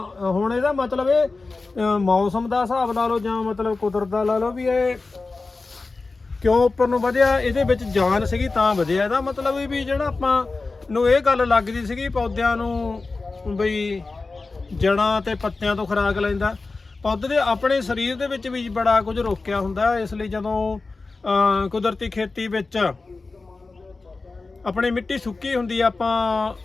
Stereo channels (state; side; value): quieter; right; 3.8 dB